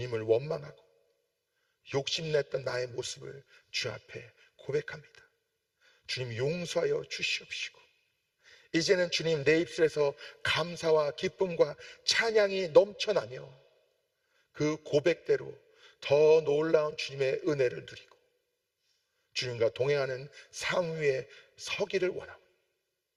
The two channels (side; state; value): both; identical; correlation 1.00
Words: 원망하고 욕심냈던 나의 모습을 주 앞에 고백합니다. 주님, 용서하여 주시옵시고 이제는 주님, 내 입술에서 감사와 기쁨과 찬양이 넘쳐나며 그 고백대로 더 놀라운 주님의 은혜를 누리고 주님과 동행하는 삶 위에 서기를 원하고